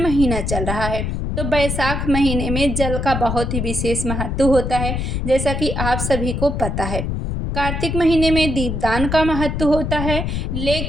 चल रहा है, तो बैसाख महीने में जल का बहुत ही विशेष महत्व होता है, जैसा कि आप सभी को पता है। कार्तिक महीने में दीपदान का महत्व होता है,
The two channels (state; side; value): noise; left; rumble, 2 dB below the sound